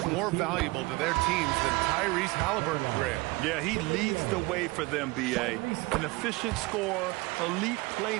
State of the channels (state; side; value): quieter; left; 23.4 dB